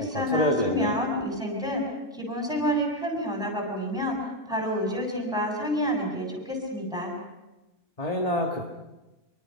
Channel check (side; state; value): both; normal; correlation 0.07